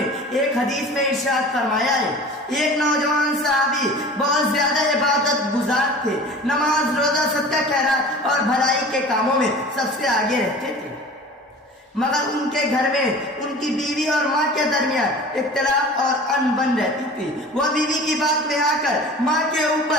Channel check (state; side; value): normal; both; correlation 0.40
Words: ایک حدیث میں ارشاد فرمایا ہے، ایک نوجوان صحابی بہت زیادہ عبادت گزار تھے، نماز روزہ صدقہ خیرات اور بھلائی کے کاموں میں سب سے آگے رہتے تھے، مگر ان کے گھر میں ان کی بیوی اور ماں کے درمیان اختلاف اور انبن رہتی تھی. وہ بیوی کی بات میں آ کر ماں کے